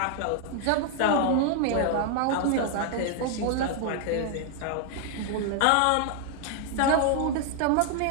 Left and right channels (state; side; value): different; both; correlation 0.00